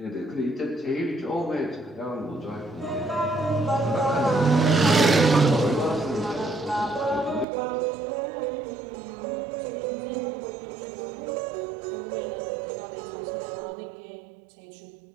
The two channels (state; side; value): drops out; left; at 7.5 s